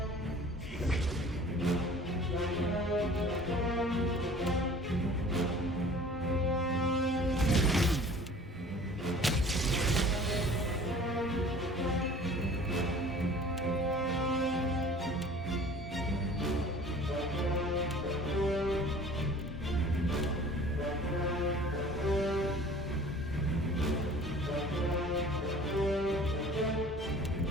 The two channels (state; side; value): normal; both; correlation 0.47